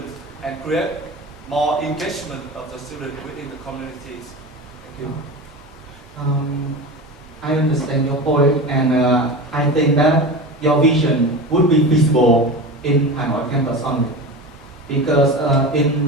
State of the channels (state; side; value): normal; both; correlation 0.28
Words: and create more engagement of the students within the communities. Thank you. I understand your point, and I think that your vision would be feasible in Hanoi campus only, because